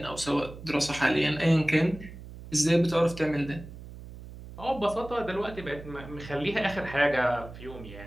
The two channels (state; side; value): noise; right; hum, 14 dB below the sound